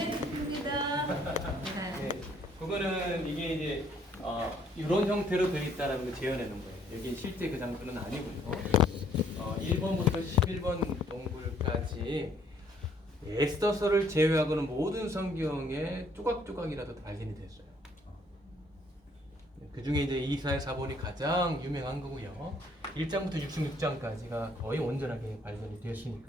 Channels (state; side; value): normal; both; correlation 0.64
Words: 좋습니다. 네, 그거는 이게 이제 이런 형태로 되어 있다라는 걸 재현해 놓은 거예요. 여기 실제 그 장소는 아니고요. 1번부터 11번 동굴까지 에스더서를 제외하고는 모든 성경에 조각조각이라도 발견이 됐어요. 그 중에 이제 이사야 4본이 가장 유명한 거고요. 1장부터 66장까지가 거의 온전하게 발견이